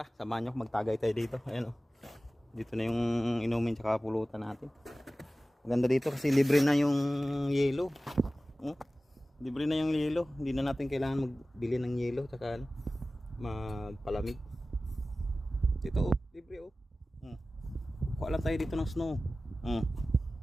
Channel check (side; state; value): both; normal; correlation 0.96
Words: samahan nyo ako, magtagay tayo dito. Ayan o, dito na yung inumin tsaka pulutan natin. Maganda dito kasi libre na yung yelo. Libre na yung yelo, hindi na natin kailangan magbili ng yelo tsaka magpalamig. Dito libre o. Kuha lang tayo dito ng snow.